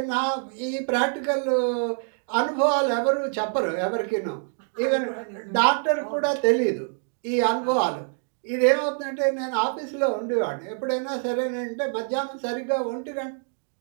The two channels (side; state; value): left; silent; 58 dB below the other